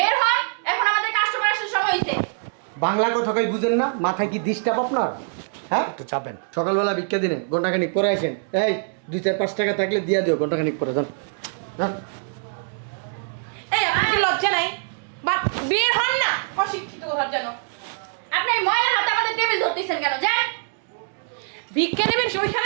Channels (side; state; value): left; silent; digital silence